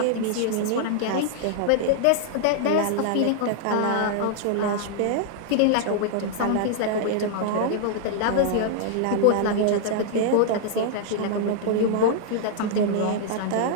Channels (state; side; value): different; both; correlation -0.01